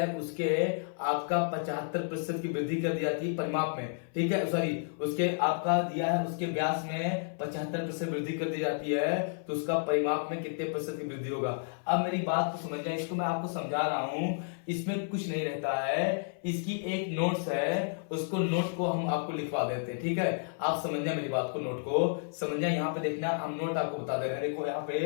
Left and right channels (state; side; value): silent; right; 57 dB below the other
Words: उसके आपका 75% की वृद्धि कर दी जाती है परिमाप में, ठीक है, सॉरी उसके आपका दिया है उसके व्यास में 75% वृद्धि कर दी जाती है तो उसका परिमाप में कितने % की वृद्धि होगा। अब मेरी बात को समझना, इसको मैं आपको समझा रहा हूं, इसमें कुछ नहीं रहता है। इसकी एक नोट्स है, उसको नोट को हम आपको लिखवा देते हैं, ठीक है। आप समझना मेरी बात को, नोट को समझना। यहाँ पे देखना हम नोट आपको बता दे रहे हैं। देखो यहाँ पे